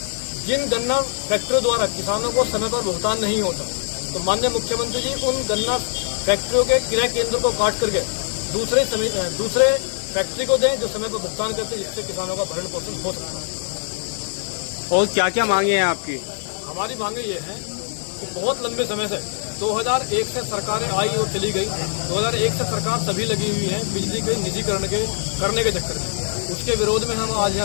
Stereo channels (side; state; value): right; silent; digital silence